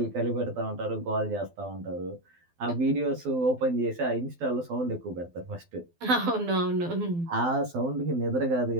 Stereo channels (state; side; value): late; left; 12 ms